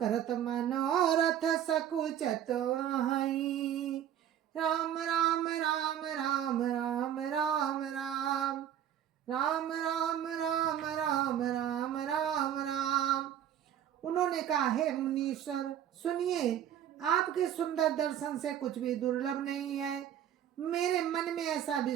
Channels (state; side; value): quieter; left; 10.3 dB